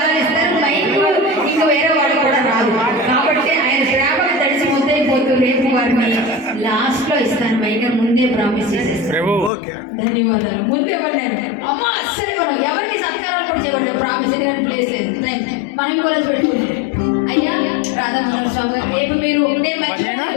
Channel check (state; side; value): drops out; right; at 9.5 s